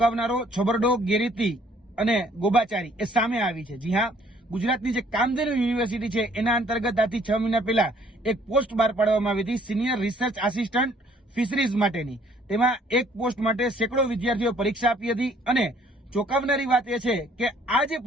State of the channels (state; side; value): normal; both; correlation 0.61